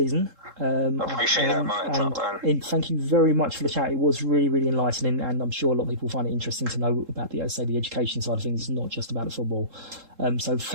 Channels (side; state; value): left; late; 3.7 ms